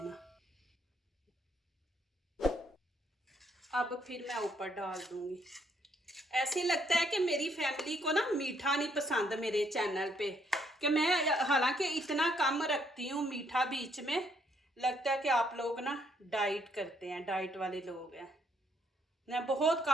अब फिर मैं ऊपर डाल दूँगी। ऐसे लगता है कि मेरी फैमिली को ना मीठा नहीं पसंद मेरे चैनल पे, कि मैं हालांकि इतना कम रखती हूँ मीठा बीच में। लगता है कि आप लोग ना डाइट करते हैं, डाइट वाले लोग हैं। मैं बहुत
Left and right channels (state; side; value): normal; both; correlation 0.70